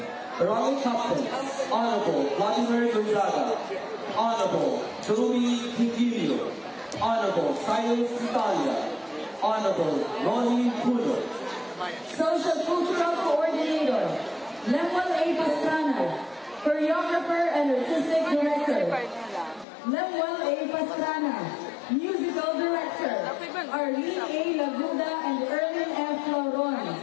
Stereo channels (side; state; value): right; drops out; at 19.7 s